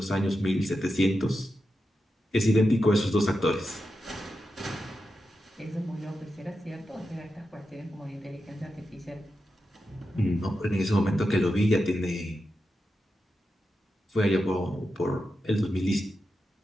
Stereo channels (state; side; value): normal; both; correlation 0.89